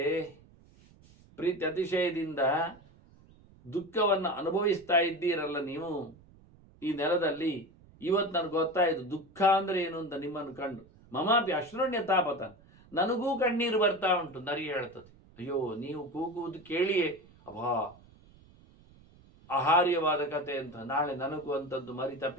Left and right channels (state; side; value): noise; right; rumble, 26 dB below the sound